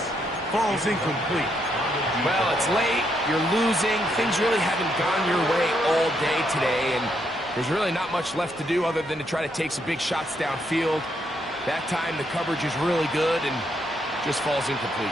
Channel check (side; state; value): both; normal; correlation 0.76